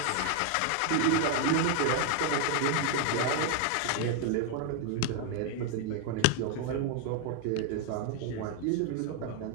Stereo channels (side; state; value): both; different; correlation 0.00